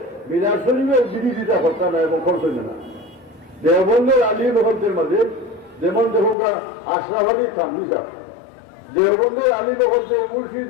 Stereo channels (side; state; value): right; drops out; at 6.4 s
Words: মিলাদ শরীফের বিরোধিতা করতে না এবং করতে না। দেওবন্দের আলিম হকদের মাঝে যেমন দেখুন আশরাফ আলী থানভী সাহেব, দেওবন্দের আলিম হকদের